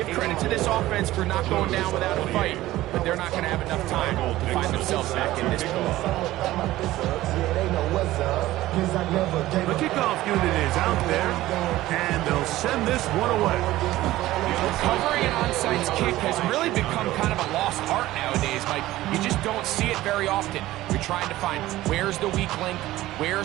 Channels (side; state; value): left; quieter; 16.1 dB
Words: credit to this offense for not going down without a fight, but they're not going to have enough time to find themselves back in this game. The kickoff unit is out there, and they'll send this one away. Covering an onside kick has really become kind of a lost art nowadays, Mike. You just don't see it very often. You're trying to find where's the weak link,